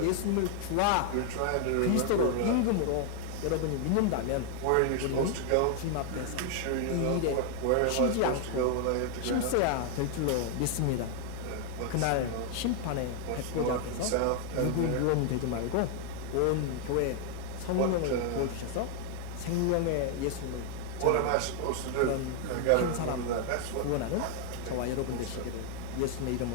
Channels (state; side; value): different; both; correlation 0.00